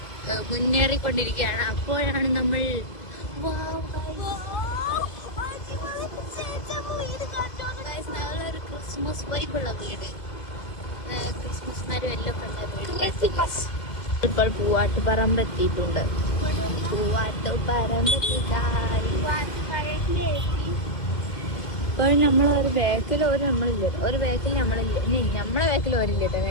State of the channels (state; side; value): late; right; 2.1 ms